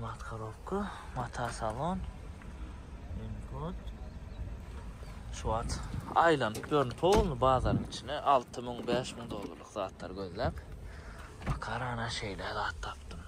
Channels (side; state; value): both; identical; correlation 1.00